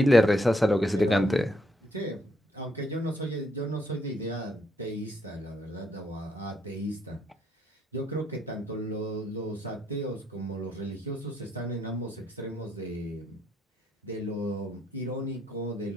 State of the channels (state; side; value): normal; both; correlation 0.74